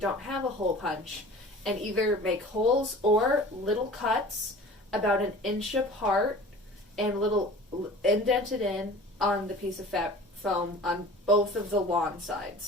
have a hole punch, and either make holes or little cuts about 1 inch apart and little indented in on the piece of foam on both of the lawn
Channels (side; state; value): both; normal; correlation 0.42